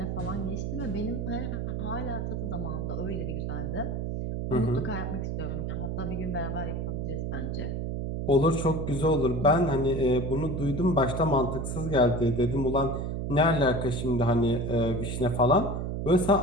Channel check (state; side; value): noise; right; hum, 3 dB below the sound